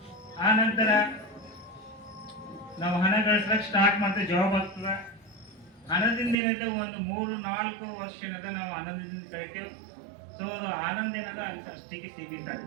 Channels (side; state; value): left; drops out; at 6.4 s